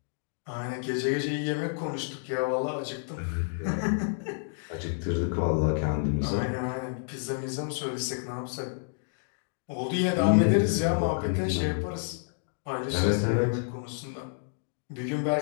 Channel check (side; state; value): right; silent; digital silence